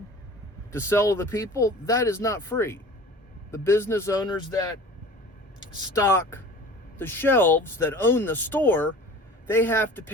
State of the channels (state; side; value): normal; both; correlation 0.42